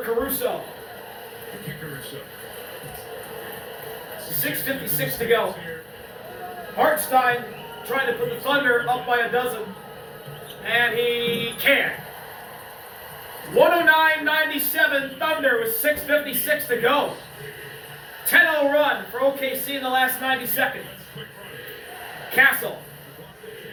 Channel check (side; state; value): both; identical; correlation 1.00